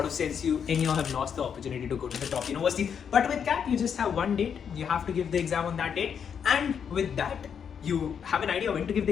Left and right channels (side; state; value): right; quieter; 7.5 dB